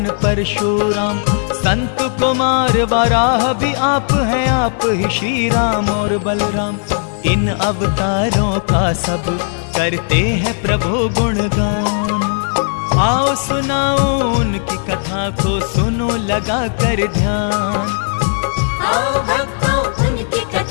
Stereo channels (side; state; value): right; silent; 62 dB below the other